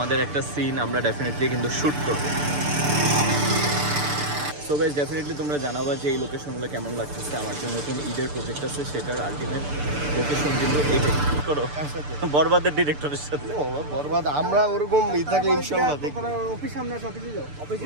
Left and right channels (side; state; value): left; late; 6.8 ms